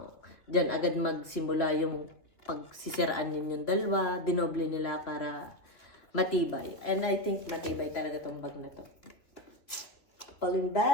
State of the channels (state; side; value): late; right; 2.8 ms